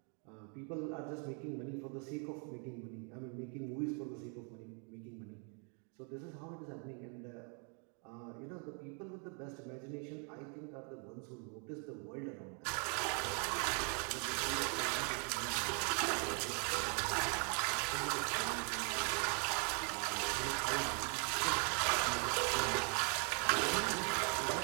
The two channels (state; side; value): quieter; left; 38.7 dB